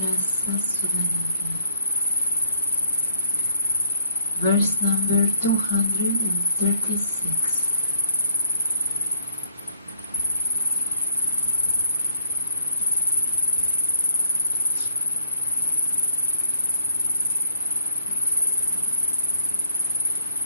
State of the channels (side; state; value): both; inverted; correlation -0.62